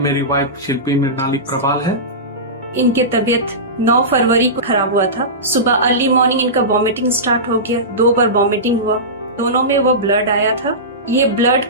वाइफ शिल्पी मृणाली प्रभाल है। इनके तबीयत 9 फरवरी को खराब हुआ था। सुबह अर्ली मॉर्निंग इनका वॉमिटिंग स्टार्ट हो गया। 2 बार वॉमिटिंग हुआ, दोनों में वो ब्लड आया था। ये ब्लड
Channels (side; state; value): both; normal; correlation -0.19